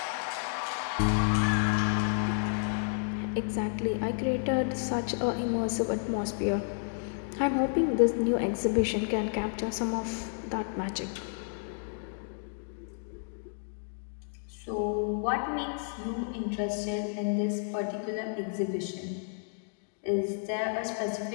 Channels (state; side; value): silent; right; digital silence